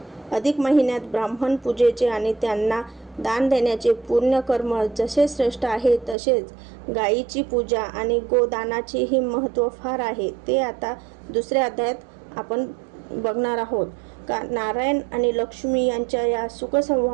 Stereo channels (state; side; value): drops out; left; at 6.2 s